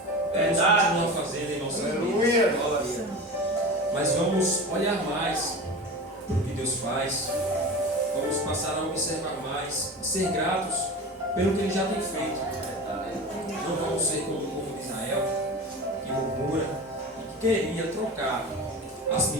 Deus continua fazendo em nossas vidas. Mas vamos olhar mais para o que Deus faz. Vamos passar a observar mais e ser gratos pelo que Ele já tem feito. Não vamos ser como o povo de Israel, que murmura e que queria trocar as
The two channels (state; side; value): normal; both; correlation 0.31